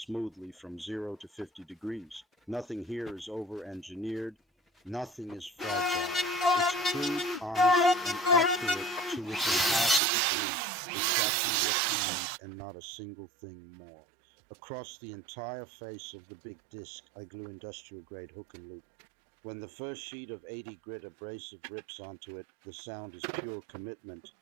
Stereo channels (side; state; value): left; drops out; at 10.0 s